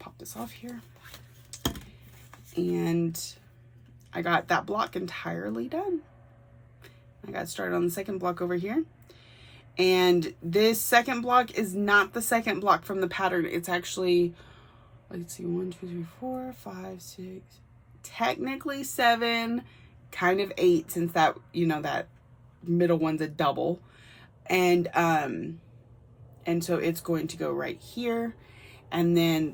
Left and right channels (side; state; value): both; identical; correlation 1.00